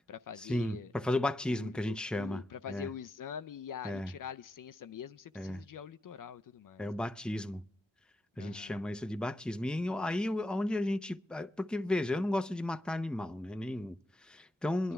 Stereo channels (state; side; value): normal; both; correlation 0.87